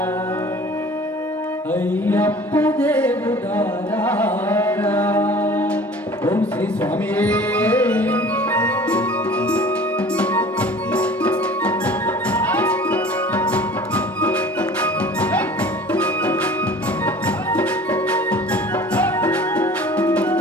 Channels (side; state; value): both; normal; correlation 0.45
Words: అయ్యప్ప దేవుడారా ఓం శ్రీ స్వామి